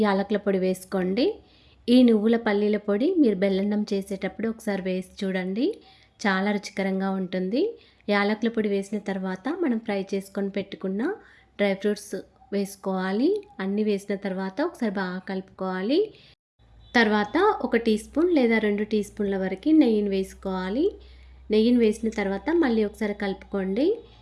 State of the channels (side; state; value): both; identical; correlation 1.00